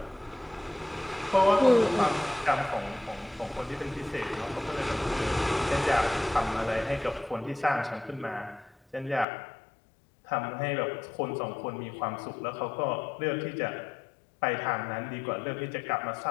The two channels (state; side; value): drops out; right; at 9.2 s